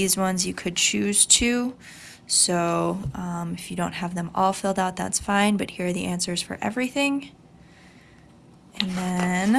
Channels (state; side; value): identical; both; correlation 1.00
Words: ones, you could choose 2. So if you don't have them all filled out, that's fine. But here are the answers for everything. And